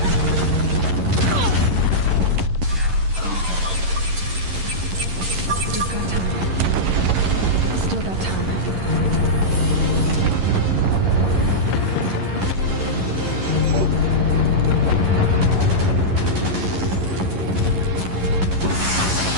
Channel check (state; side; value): late; left; 11 ms